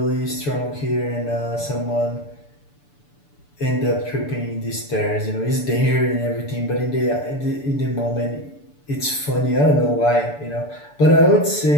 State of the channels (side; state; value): right; late; 6.9 ms